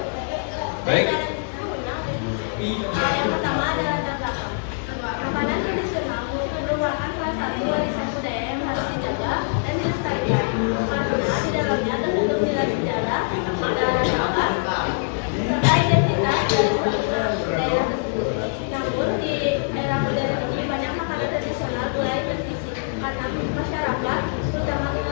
Baik. Yang pertama adalah latar belakang. Makanan tradisional merupakan salah satu warisan budaya yang harus dijaga dan dilestarikan. Karena di dalamnya terkandung nilai sejarah, budaya lokal, serta identitas dari daerah tersebut. Namun di era modern ini banyak makanan tradisional mulai tersisih karena masyarakat, terutama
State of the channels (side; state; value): right; silent; 57 dB below the other